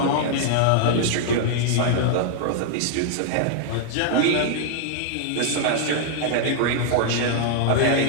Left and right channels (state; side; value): different; both; correlation -0.01